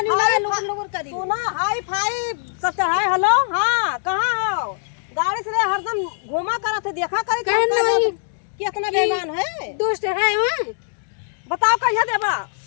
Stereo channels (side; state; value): right; silent; digital silence